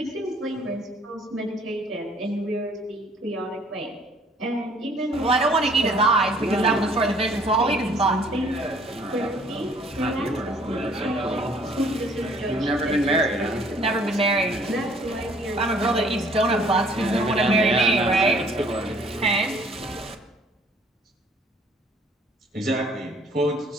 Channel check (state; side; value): normal; both; correlation 0.58